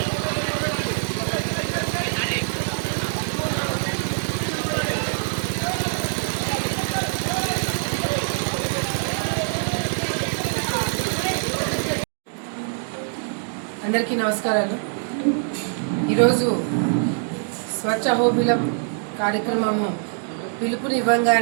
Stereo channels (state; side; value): silent; left; digital silence